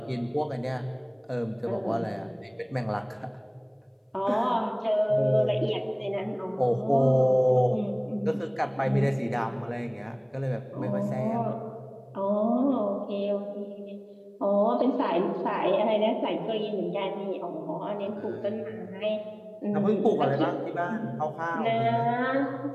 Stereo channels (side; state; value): both; identical; correlation 1.00